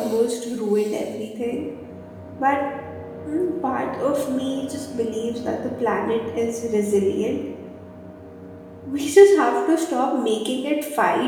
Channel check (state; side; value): identical; both; correlation 1.00